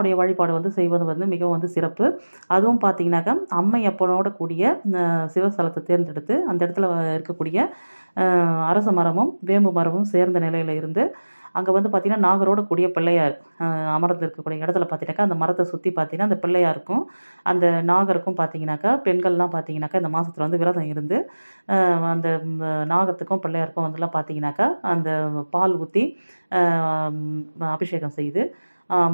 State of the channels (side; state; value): both; inverted; correlation -1.00